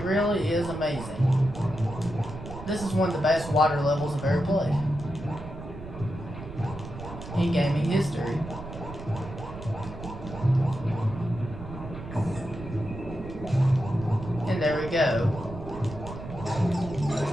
really is amazing. This is one of the best water levels I've ever played in gaming history. And there we go.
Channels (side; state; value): right; noise; rumble, 11 dB below the sound